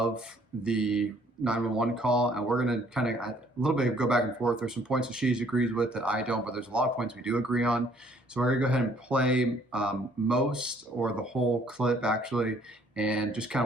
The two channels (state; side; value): normal; both; correlation 0.61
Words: the 911 call, and we're going to kind of a little bit go back and forth. There's some points that she agrees with that I don't, but there's a lot of points we do agree on. So we're going to go ahead and play most or the whole clip actually, and just